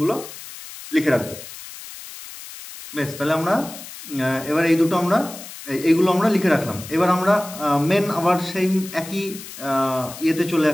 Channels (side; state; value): left; noise; hiss, 14 dB below the sound